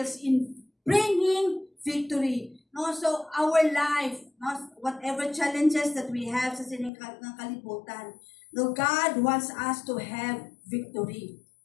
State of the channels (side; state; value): right; drops out; at 6.9 s